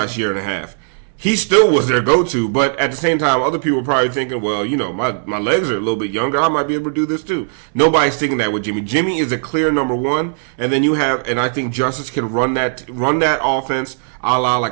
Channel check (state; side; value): silent; left; digital silence